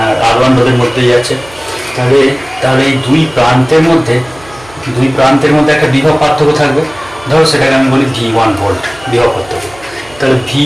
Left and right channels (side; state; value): right; noise; hum, 23 dB below the sound